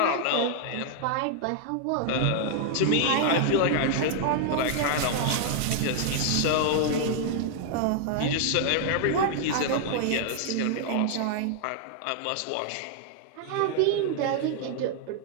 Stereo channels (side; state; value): both; different; correlation 0.00